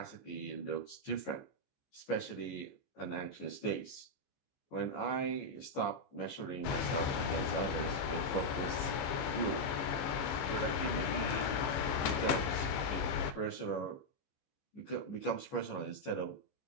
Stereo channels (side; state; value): right; late; 14 ms